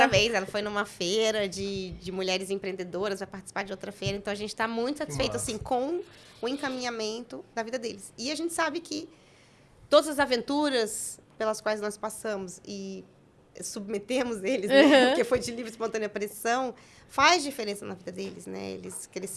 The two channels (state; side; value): identical; both; correlation 1.00